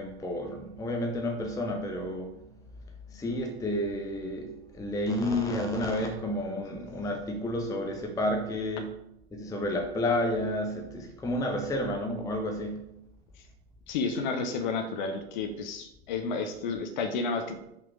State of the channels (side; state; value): both; normal; correlation 0.28